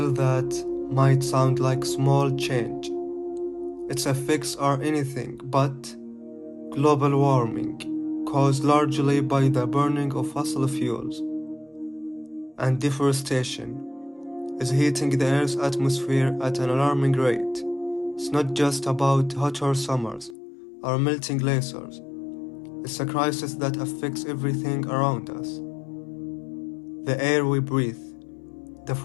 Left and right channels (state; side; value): drops out; right; at 20.4 s